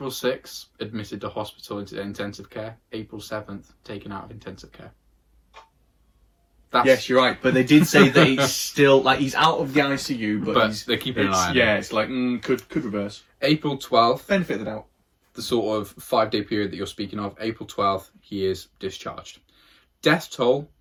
6th, admitted to hospital into intensive care. April 7th, taken out of intensive care. Yes, you're right, but they did say that he's still, like, he's out of the ICU, but they're keeping an eye on him. Yeah, it's like, could reverse. April 12th, benefit of the doubt. The sort of 5-day period that you're speaking of, April 12th, he is discharged. Death toll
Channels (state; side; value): identical; both; correlation 1.00